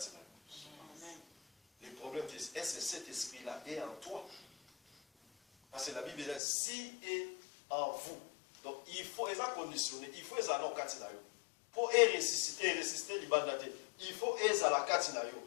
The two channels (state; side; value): drops out; right; at 6.4 s